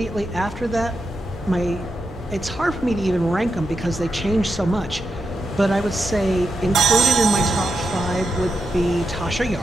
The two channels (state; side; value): normal; both; correlation 0.86